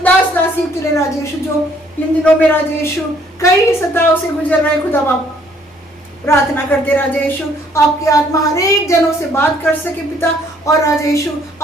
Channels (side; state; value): both; normal; correlation 0.63